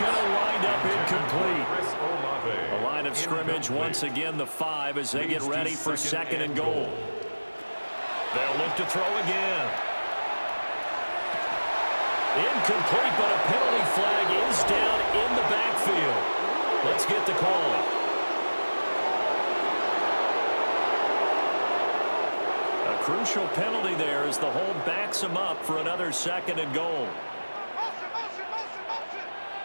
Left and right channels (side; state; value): both; inverted; correlation -1.00